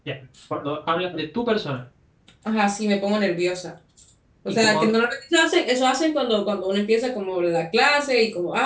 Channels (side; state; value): both; identical; correlation 1.00